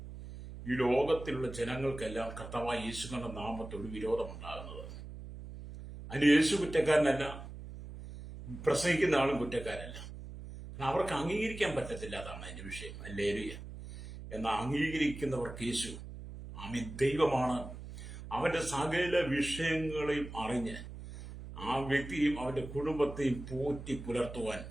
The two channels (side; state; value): right; noise; hum, 11 dB below the sound